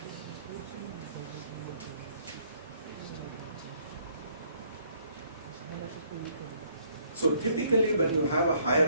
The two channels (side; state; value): both; inverted; correlation -0.66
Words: So typically when you have a higher